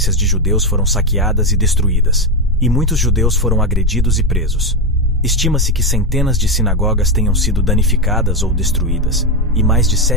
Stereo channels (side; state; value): both; normal; correlation 0.10